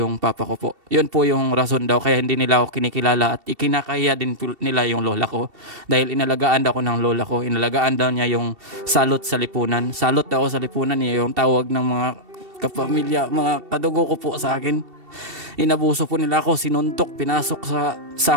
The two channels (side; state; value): left; late; 2.7 ms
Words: papa ko po. Yun po yung rason daw. Kaya hindi nila ako kinikilala at ikinakaya din nila yung lola ko. Dahil inalagaan daw ko ng lola ko. Inalagaan daw niya yung salot sa lipunan. Salot daw sa lipunan niya yung tawag ng mga kapamilya, mga kadugo ko po sa akin. Inabuso po nila ako, sinuntok, pinasok sa